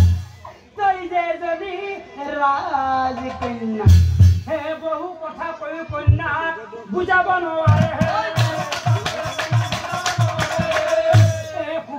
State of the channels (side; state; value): both; identical; correlation 1.00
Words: তই যে এজনী ৰাজকন্যা হে বহু কথা কৈ কন্যা বুজাব নোৱাৰে